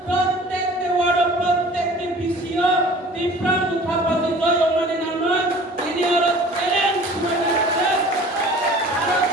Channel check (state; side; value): normal; both; correlation 0.46